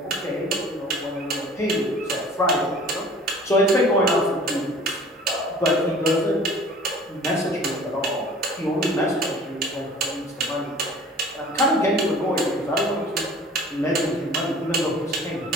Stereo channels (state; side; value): normal; both; correlation 0.47